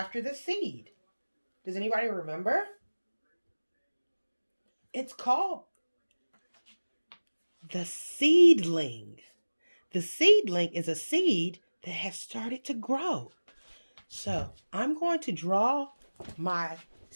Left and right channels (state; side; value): inverted; both; correlation -1.00